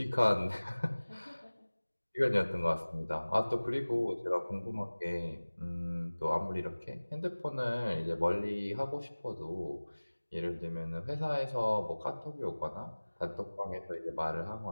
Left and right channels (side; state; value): both; inverted; correlation -1.00